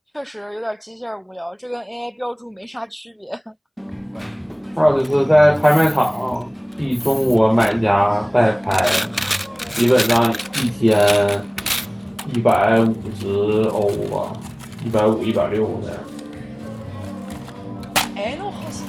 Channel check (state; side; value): identical; both; correlation 1.00